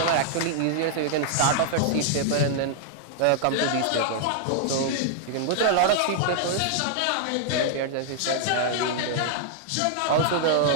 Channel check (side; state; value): both; different; correlation -0.01